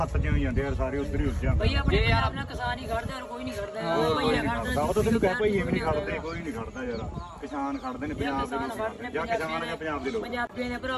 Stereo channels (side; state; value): both; identical; correlation 1.00